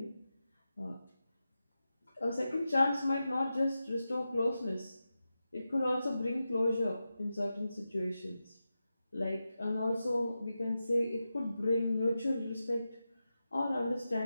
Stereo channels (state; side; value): inverted; both; correlation -0.91